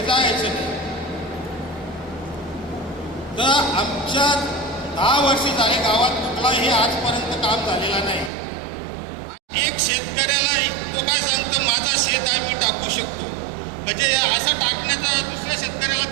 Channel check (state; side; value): drops out; left; at 8.3 s